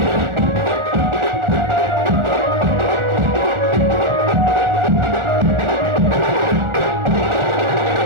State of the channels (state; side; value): late; left; 1.4 ms